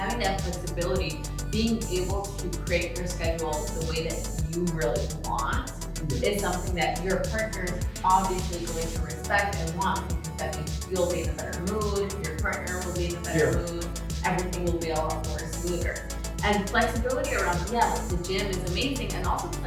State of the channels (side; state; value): both; identical; correlation 1.00